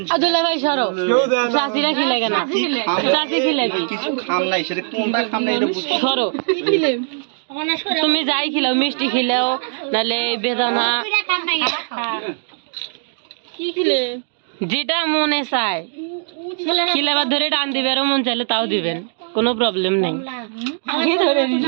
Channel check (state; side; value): silent; left; 66 dB below the other